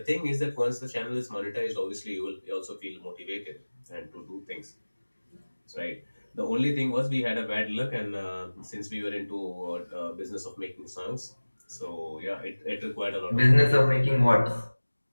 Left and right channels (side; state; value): both; inverted; correlation -1.00